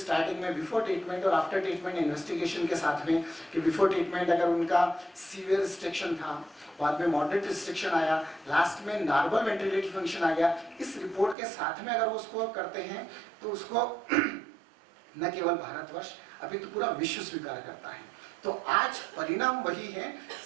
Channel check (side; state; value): left; drops out; at 11.4 s